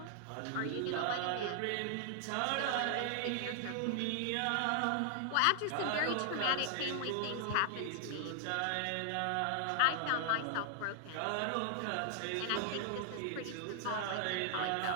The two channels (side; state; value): both; different; correlation 0.00